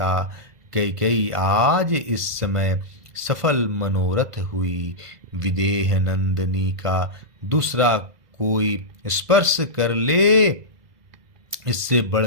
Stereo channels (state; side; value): late; left; 2.0 ms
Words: कैकेयी आज इस समय सफल मनोरथ हुई। विदेह नंदिनी का दूसरा कोई स्पर्श कर ले, इससे